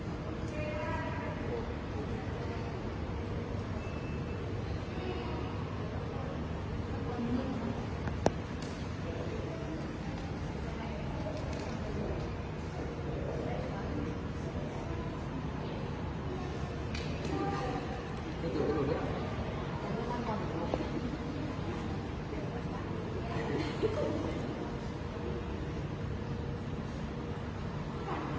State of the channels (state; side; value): identical; both; correlation 1.00